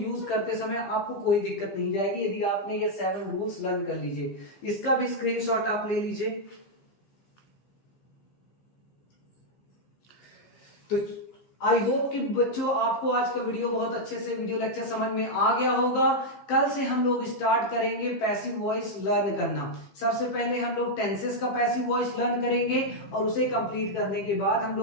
करते समय आपको कोई दिक्कत नहीं जाएगी यदि आपने ये 7 रूल्स लर्न कर लीजिए। इसका भी स्क्रीनशॉट आप ले लीजिए। तो आई होप कि बच्चों आपको आज का वीडियो बहुत अच्छे से वीडियो लेक्चर समझ में आ गया होगा। कल से हम लोग स्टार्ट करेंगे पैसिव वॉइस लर्न करना। सबसे पहले हम लोग टेंसेस का पैसिव वॉइस लर्न करेंगे और उसे कंप्लीट करने के बाद हम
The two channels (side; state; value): right; late; 15 ms